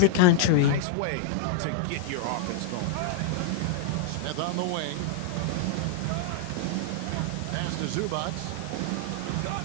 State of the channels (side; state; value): both; different; correlation -0.01